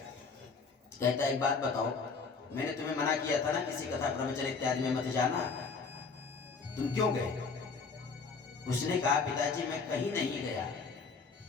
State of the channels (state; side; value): quieter; right; 4.8 dB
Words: कहता एक बात बताओ, मैंने तुम्हें मना किया था ना किसी कथा प्रवचन इत्यादि में मत जाना, तुम क्यों गए? उसने कहा पिताजी मैं कहीं नहीं गया।